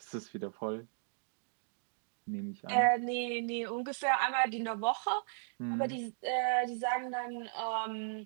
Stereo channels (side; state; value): left; silent; digital silence